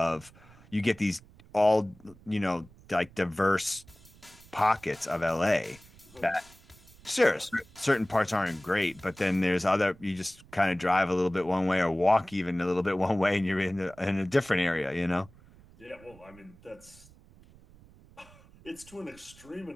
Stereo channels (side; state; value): right; noise; rumble, 24 dB below the sound